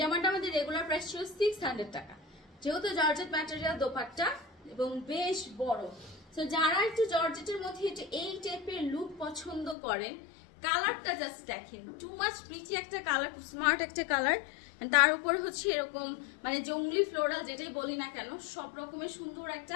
জামাটা আমাদের রেগুলার প্রাইস ছিল 600 টাকা, যেহেতু জর্জেট ম্যাটেরিয়াল দোপাট্টা এবং বেশ বড়। সো যারা একটু জর্জেটের মধ্যে একটু এই টাইপের লুক পছন্দ করেন, কালারটা জাস্ট দেখেন, টু মাচ প্রিটি একটা কালার, খুব স্মার্ট একটা কালার। তার উপর হচ্ছে এরকম মানে জঙ্গলি ফ্লোরাল যেটাই বলি না কেন, সব রকমের সুন্দর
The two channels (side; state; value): right; drops out; at 9.8 s